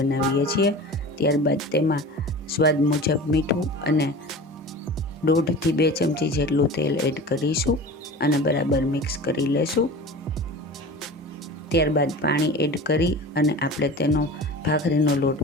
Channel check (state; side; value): normal; both; correlation 0.36